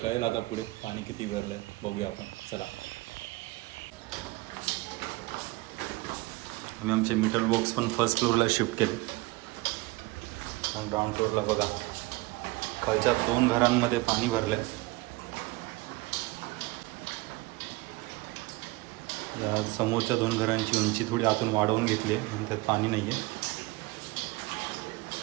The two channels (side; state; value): left; quieter; 22.2 dB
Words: कळेल आता पुढे पाणी किती भरलं आहे, बघूया आपण. चला. आम्ही आमचे मीटर बॉक्स पण फर्स्ट फ्लोअरला शिफ्ट केले आणि ग्राउंड फ्लोअरला बघा, खालच्या 2 घरांमध्ये पाणी भरलं आहे. या समोरच्या 2 घरांची उंची थोडी आतून वाढवून घेतली आहे आणि त्यात पाणी नाही आहे.